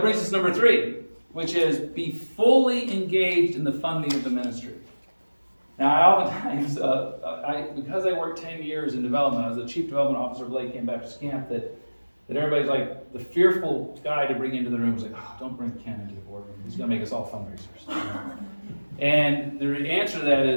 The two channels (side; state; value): both; inverted; correlation -1.00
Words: brings us to number 3, which is be fully engaged in the funding of the ministry. Now, I oftentimes, because I worked 10 years in development, I was the chief development officer of Lake Camp Baptist Camp, that everybody's like, the fearful guy to bring into the room was like, oh, don't bring Ken into the boardroom. He's going to make us all fundraisers. And the answer to that